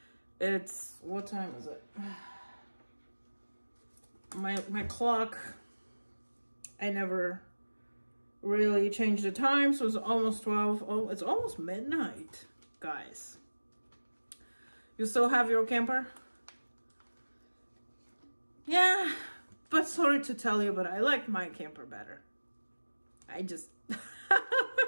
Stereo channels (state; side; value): inverted; both; correlation -1.00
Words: what time is it? My clock, I never really changed the time, so it's almost 12. Oh, it's almost midnight, guys. You still have your camper? Yeah, but sorry to tell you, but I like my camper better. It